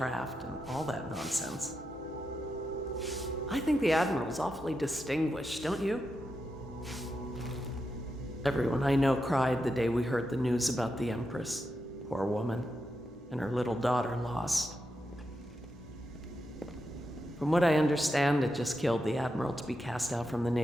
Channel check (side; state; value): both; normal; correlation 0.86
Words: and all that nonsense. I think the Admiral's awfully distinguished, don't you? Everyone I know cried the day we heard the news about the Empress. Poor woman. And her little daughter lost. From what I understand, it just killed the Admiral to be cast out from the